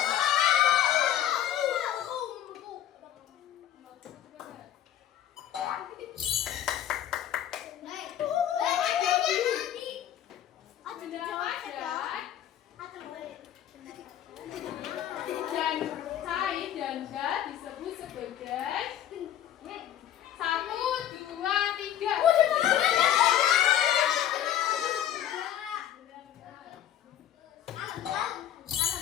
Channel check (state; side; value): quieter; right; 11.0 dB